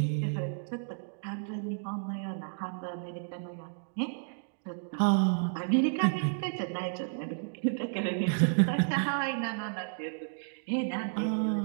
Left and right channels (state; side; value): silent; left; digital silence